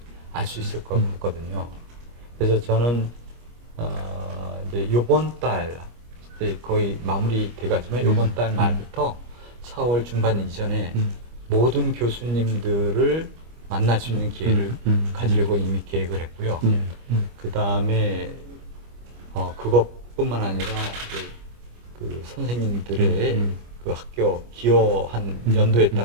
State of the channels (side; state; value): left; late; 25 ms